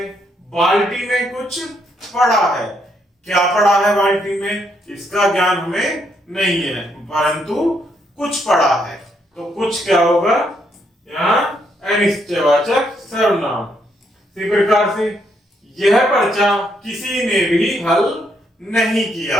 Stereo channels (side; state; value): both; normal; correlation 0.74